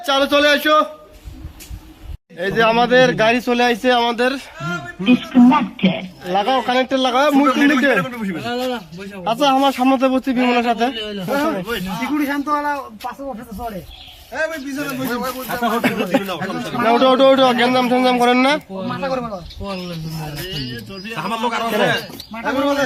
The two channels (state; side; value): identical; both; correlation 1.00